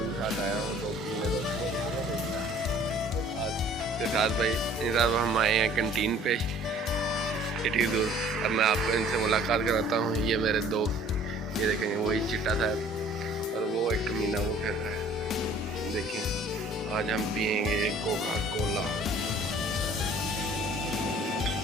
के साथ आया हूँ, दोस्तों के साथ भाई साहब हम आए हैं कैंटीन पे इतनी दूर। अब मैं आपको इनसे मुलाकात कराता हूँ। ये मेरे दोस्त, ये देखेंगे वही चिट्टा साहब और वो एक कमीना वो फिर रहा है। देखें आज हम पियेंगे कोका कोला।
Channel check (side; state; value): both; normal; correlation 0.53